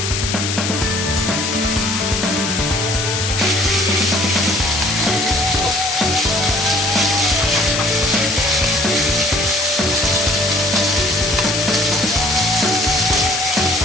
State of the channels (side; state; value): left; noise; hiss, 2 dB below the sound